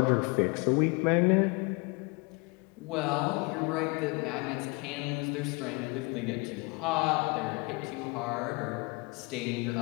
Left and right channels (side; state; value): right; quieter; 28.8 dB